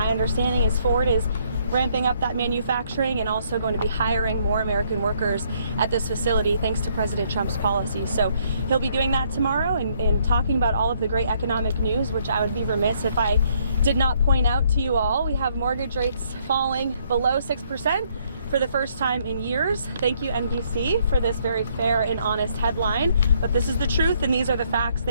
understanding is Ford is ramping up that manufacturing and also going to be hiring more American workers at this facility thanks to President Trump's policies. So he'll be doing that tomorrow and talking about all of the great economic news, which I would be remiss if I did not point out to you all. We have mortgage rates falling below 6% for the first time in years. Thank you, NBC, for this very fair and honest headline. But this is the truth, and these are the facts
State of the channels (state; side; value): inverted; both; correlation -0.68